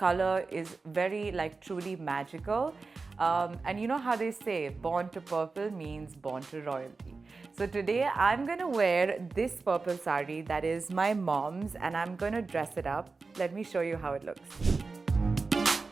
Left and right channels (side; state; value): left; quieter; 4.1 dB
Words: is very truly magical. And you know how they say, born to purple means born to royalty. So today I'm gonna wear this purple sari that is my mom's, and I'm gonna dress it up. Let me show you how it looks.